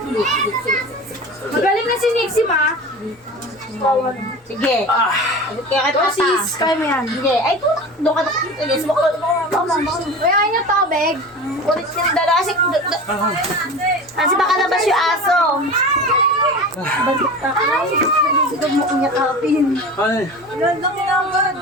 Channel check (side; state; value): both; normal; correlation 0.33